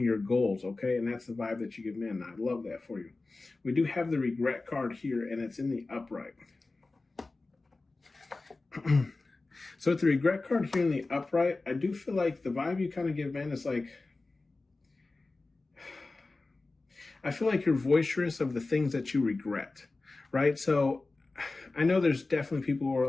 your goals. Okay. And that's the vibe that you give men. I love that for you. We do have the regret card here, and it's in the upright. So with the regret card here in the upright, I do feel like the vibe you kind of give men is like, I feel like you're boisterous of the things that you regret, right? So I know there's definitely people who are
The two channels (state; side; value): quieter; right; 3.4 dB